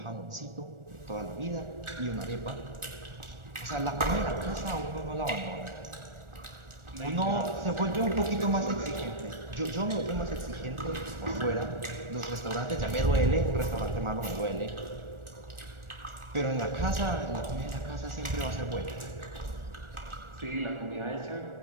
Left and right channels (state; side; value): late; left; 1.4 ms